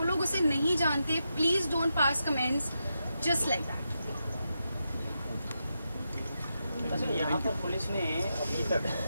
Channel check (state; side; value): inverted; both; correlation -0.86